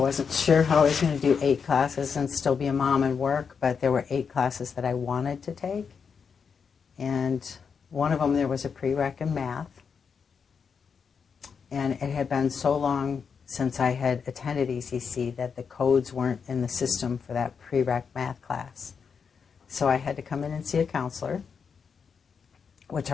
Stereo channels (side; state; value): right; quieter; 6.2 dB